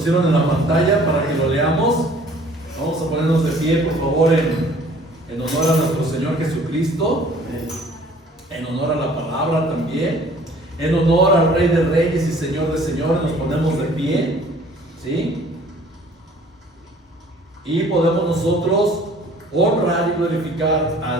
en la pantalla para que lo leamos. Vamos a ponernos de pie, por favor, en honor a nuestro Señor Jesucristo, en honor a la palabra también, en honor al Rey de Reyes y Señor de Señores. Nos ponemos de pie, ¿sí? Y podemos nosotros honrar y glorificar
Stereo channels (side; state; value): both; normal; correlation 0.53